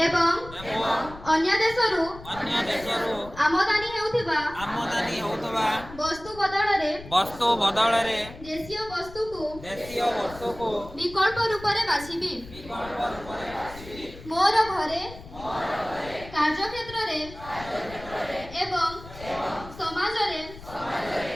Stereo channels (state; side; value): noise; left; rumble, 16 dB below the sound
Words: ଏବଂ ଅନ୍ୟ ଦେଶରୁ ଆମଦାନୀ ହେଉଥିବା ବସ୍ତୁ ବଦଳରେ ଦେଶୀୟ ବସ୍ତୁକୁ ବିକଳ୍ପ ରୂପରେ ବାଛିବି। ମୋର ଘରେ କାର୍ଯ୍ୟକ୍ଷେତ୍ରରେ ଏବଂ ସମାଜରେ